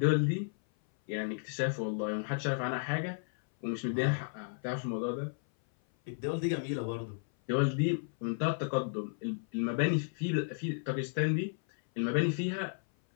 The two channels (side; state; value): right; silent; 56 dB below the other